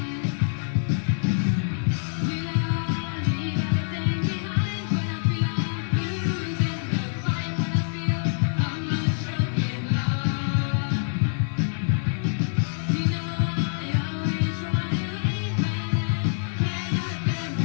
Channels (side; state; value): right; silent; 61 dB below the other